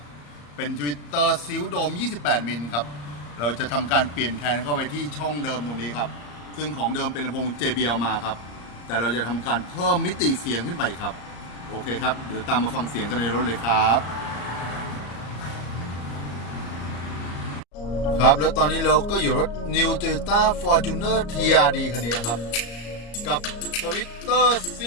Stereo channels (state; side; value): late; right; 34 ms